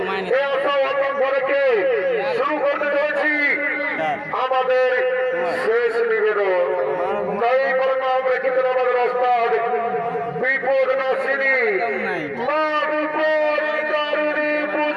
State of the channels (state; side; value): identical; both; correlation 1.00